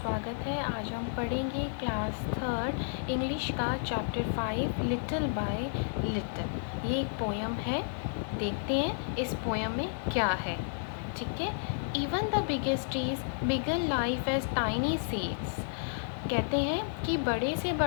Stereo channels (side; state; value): right; silent; digital silence